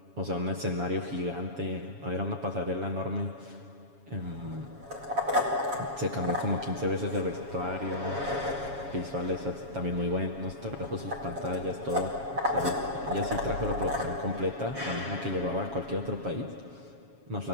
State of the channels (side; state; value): left; late; 7.2 ms